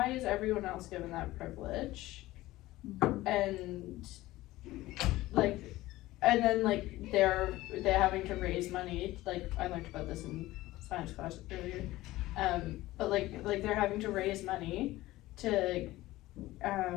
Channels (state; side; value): quieter; right; 17.4 dB